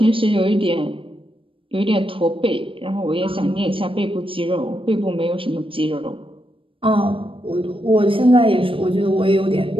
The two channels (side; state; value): left; late; 0.26 ms